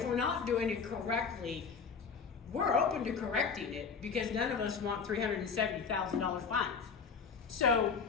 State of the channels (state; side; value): quieter; right; 5.7 dB